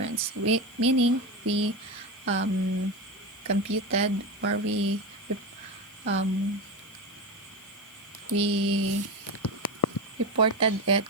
Meaning we computed, or um, we reported it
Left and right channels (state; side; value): noise; left; hiss, 26 dB below the sound